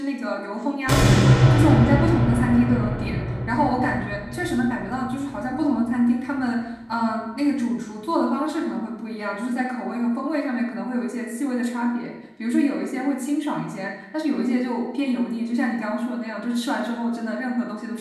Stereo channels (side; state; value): both; identical; correlation 1.00